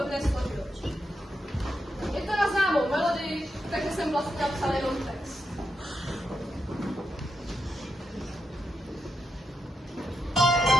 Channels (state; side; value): normal; both; correlation 0.85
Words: dne složil. Je to na známou melodii, takže jsem vlastně napsal jenom text.